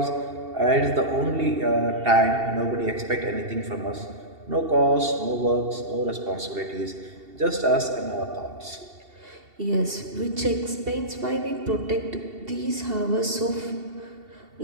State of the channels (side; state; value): left; late; 2.7 ms